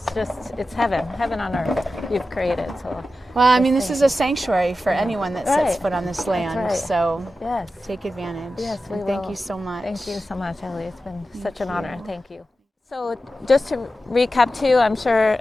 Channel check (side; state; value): both; normal; correlation 0.92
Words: it's heaven on earth you've created. So Well, I mean, just this is thank a sanctuary for anyone that sets Right. foot on this land. right. So yes. take advantage. Yes, we And thank will. you so much. Thank you so much, Ellie. It's been such an honor. Thank you. So just to recap too, I'm sure,